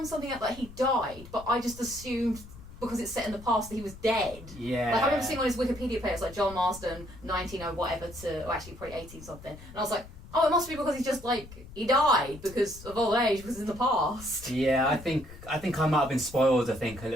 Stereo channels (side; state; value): left; noise; rumble, 17 dB below the sound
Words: something out that he died, but I just assumed because it's set in the past that he was dead. Yeah. Like I remember seeing on his Wikipedia page like John Marsden 19 whatever to, or actually probably 18 something, and I was like, oh, it must be because he's just like he died because of old age because in the past. Yeah, I think I might have been spoiled. I think a